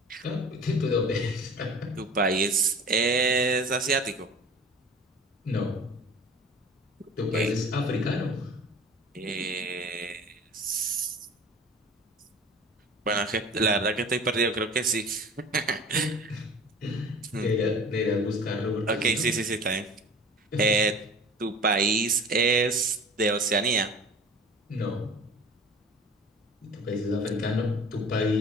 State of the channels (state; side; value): normal; both; correlation 0.42